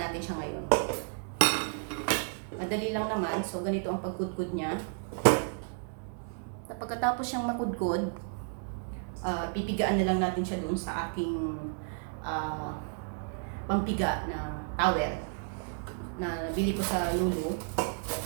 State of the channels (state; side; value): silent; left; 56 dB below the other